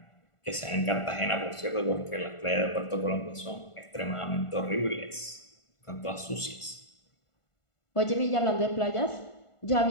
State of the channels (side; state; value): right; late; 1.5 ms